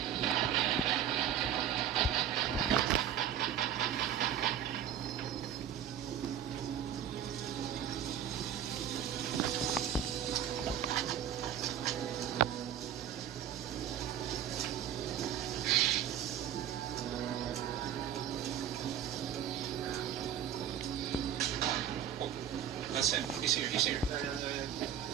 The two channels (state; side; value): quieter; left; 9.6 dB